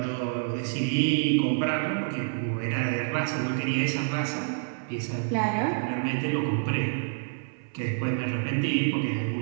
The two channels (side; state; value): left; silent; 56 dB below the other